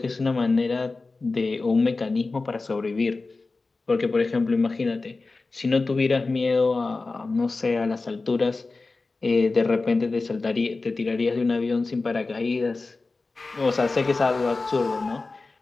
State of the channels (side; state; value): right; quieter; 3.7 dB